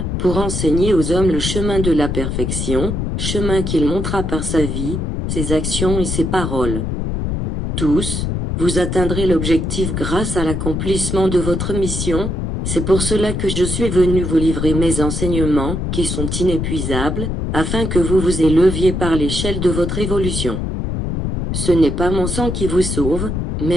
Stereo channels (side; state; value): left; noise; rumble, 2 dB below the sound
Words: pour enseigner aux hommes le chemin de la perfection, chemin qu'il montra par sa vie, ses actions et ses paroles. Tous, vous atteindrez l'objectif grâce à l'accomplissement de votre mission, c'est pour cela que je suis venu vous livrer mes enseignements qui sont inépuisables, afin que vous vous éleviez par l'échelle de votre évolution. Ce n'est pas mon sang qui vous sauve,